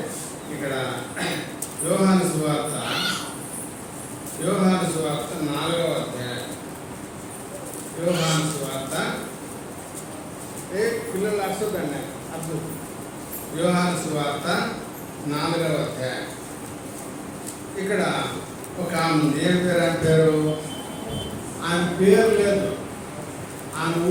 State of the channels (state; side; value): identical; both; correlation 1.00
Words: ఇక్కడ యోహాను సువార్త 4వ అధ్యాయం. యోహాను సువార్త పిల్లలు అర్థండి అర్థం. యోహాను సువార్త 4వ అధ్యాయం ఇక్కడ ఒక ఆమె ఉంది. ఏం పేరు? ఆమె పేరు, ఆమె పేరు లేదు. ఆమె